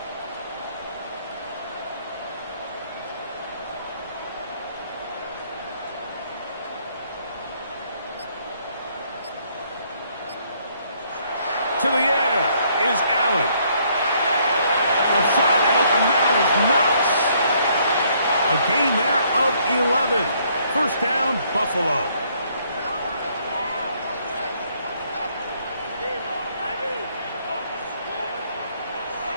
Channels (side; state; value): both; inverted; correlation -0.67